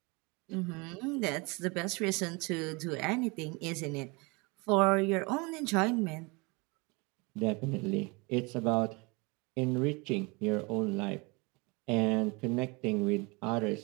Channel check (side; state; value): left; quieter; 27.8 dB